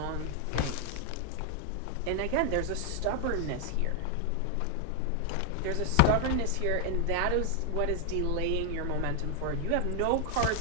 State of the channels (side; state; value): both; different; correlation 0.00